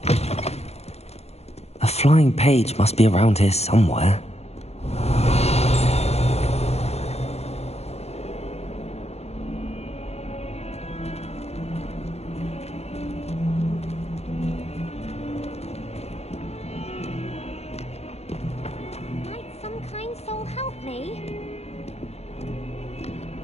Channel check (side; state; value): right; late; 0.31 ms